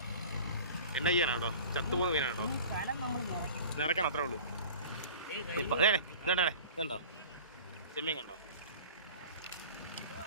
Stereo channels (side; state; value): both; inverted; correlation -0.40